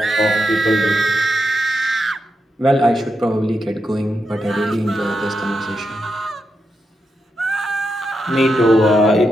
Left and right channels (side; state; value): both; normal; correlation 0.85